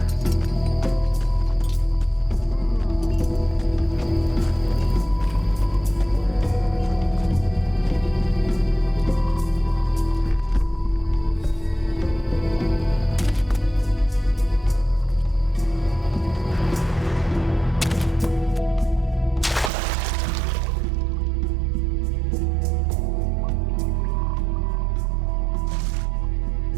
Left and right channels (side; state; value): left; drops out; at 19.7 s